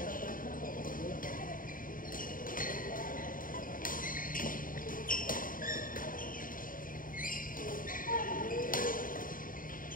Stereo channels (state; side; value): late; right; 0.40 ms